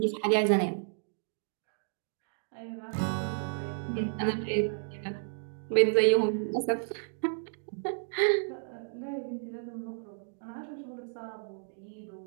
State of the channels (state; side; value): silent; left; digital silence